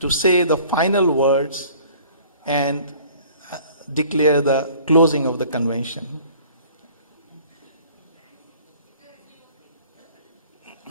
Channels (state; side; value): inverted; both; correlation -0.51